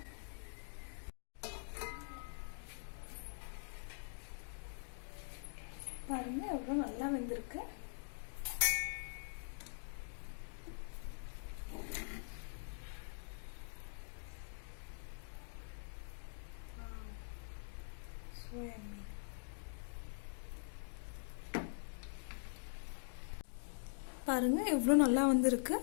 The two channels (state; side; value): silent; right; digital silence